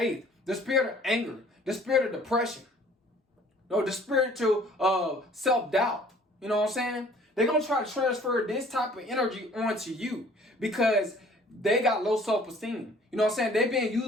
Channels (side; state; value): both; normal; correlation 0.54